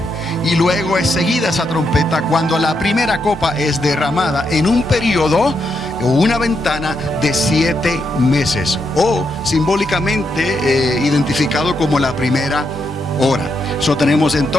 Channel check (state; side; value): normal; both; correlation 0.81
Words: Y luego es seguida esa trompeta cuando la primera copa es derramada en un periodo o una ventana de 7 meses. O simbólicamente identificado como la primera hora. Tenemos